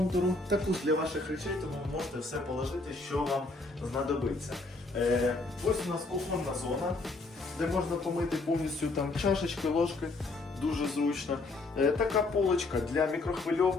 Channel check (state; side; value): quieter; right; 3.3 dB